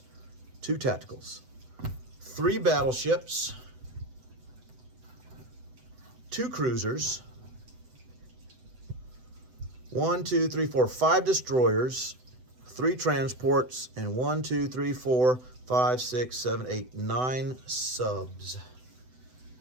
2 tacticals. 3 battleships, 2 cruisers, 1, 2, 3, 4, 5 destroyers, 3 transports, and 1, 2, 3, 4, 5, 6, 7, 8, 9 subs.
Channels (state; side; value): late; left; 7.9 ms